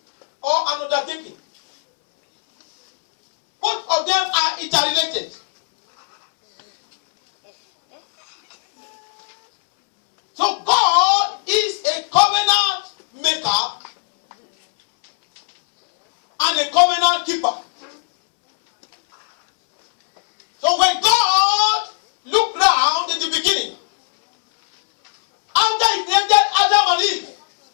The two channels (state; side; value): silent; right; 68 dB below the other